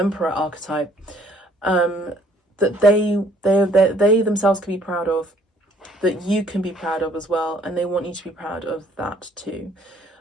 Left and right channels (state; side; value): normal; both; correlation 0.61